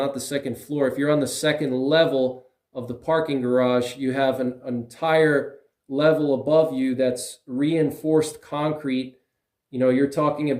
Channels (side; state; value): both; identical; correlation 1.00